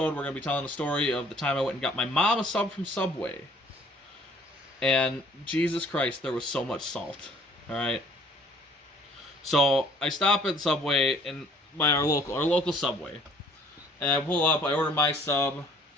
we're going to be telling the story of the time I went and got my mom a sub from Subway. And Jesus Christ, there was so much salt. All right. So I stop at Subway by our local Subway, and I pull up. I order my sub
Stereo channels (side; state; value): both; normal; correlation 0.56